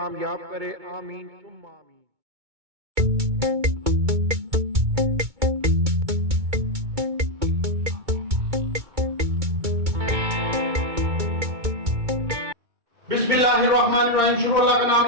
करे। आमीन सुम्मा आमीन। बिस्मिल्लाहिर्रहमानिर्रहीम। शुरू अल्लाह का नाम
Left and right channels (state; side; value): late; left; 2.2 ms